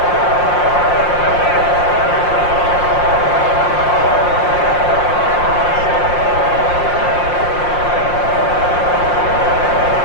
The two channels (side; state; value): right; late; 5.6 ms